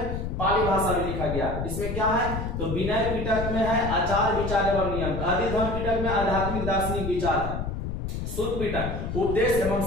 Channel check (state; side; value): noise; left; rumble, 4 dB below the sound